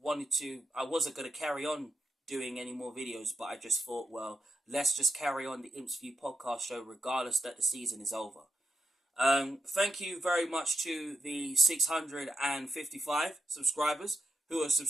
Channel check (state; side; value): normal; both; correlation 0.86